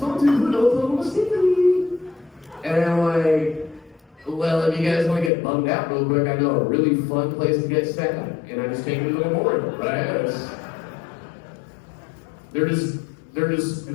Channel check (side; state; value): right; drops out; at 5.3 s